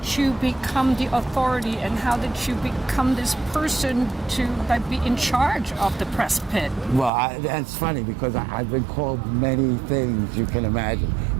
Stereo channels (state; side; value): drops out; left; at 7.1 s